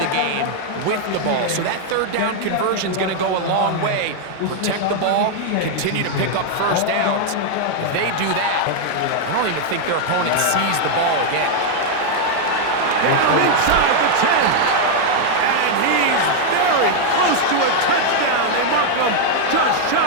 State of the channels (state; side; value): different; both; correlation 0.00